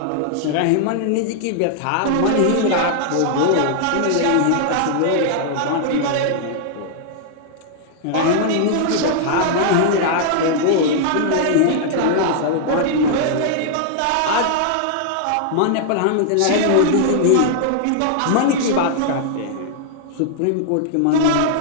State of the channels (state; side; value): different; both; correlation -0.01